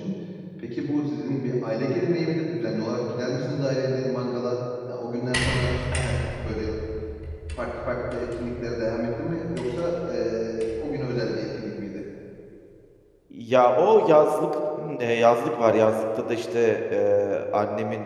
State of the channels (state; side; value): identical; both; correlation 1.00